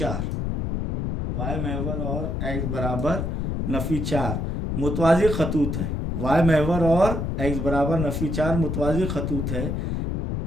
वाई महवर और x बराबर नफ़ी 4 मुतवाज़ी खतूत है। वाई महवर और x बराबर नफ़ी 4 मुतवाज़ी खतूत है।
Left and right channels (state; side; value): noise; left; rumble, 1 dB below the sound